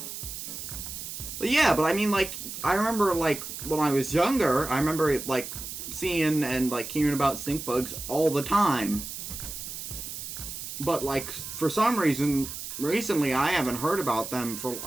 But yeah, but I mean, like, I remember, like, when I was younger, I remember, like, seeing and, like, hearing about stink bugs all the time. But, like, for some reason, recently I haven't heard about them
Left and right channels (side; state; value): right; noise; hiss, 8 dB below the sound